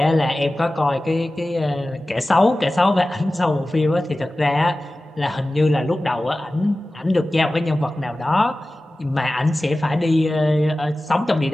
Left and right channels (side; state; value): both; normal; correlation 0.96